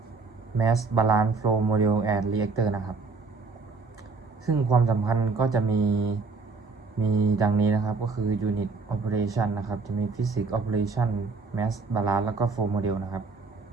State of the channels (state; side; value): quieter; left; 4.2 dB